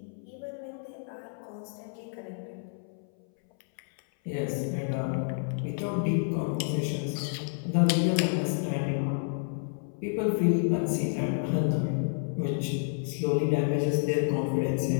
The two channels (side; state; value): right; silent; 58 dB below the other